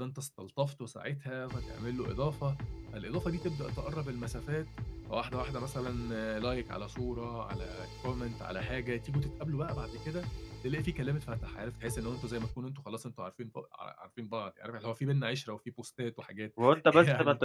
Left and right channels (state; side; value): identical; both; correlation 1.00